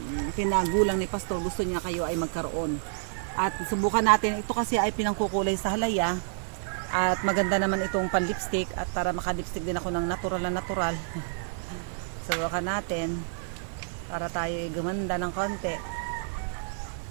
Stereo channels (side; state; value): left; silent; 59 dB below the other